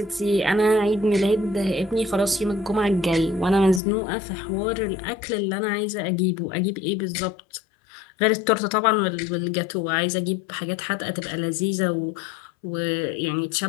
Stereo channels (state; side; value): drops out; right; at 3.8 s